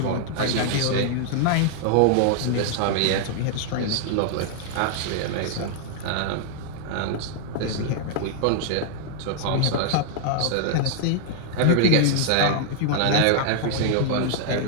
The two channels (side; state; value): both; different; correlation 0.00